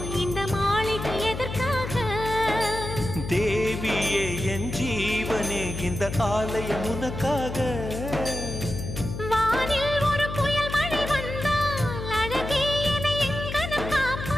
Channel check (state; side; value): noise; left; hum, 7 dB below the sound